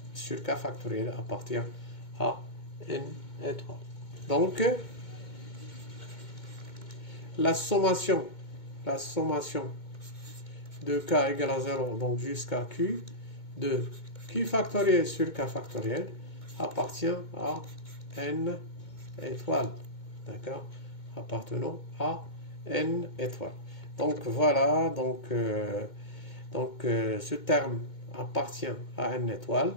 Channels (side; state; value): right; late; 2.2 ms